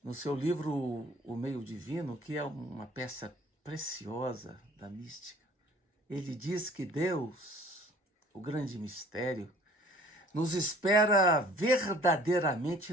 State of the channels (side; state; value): both; normal; correlation 0.52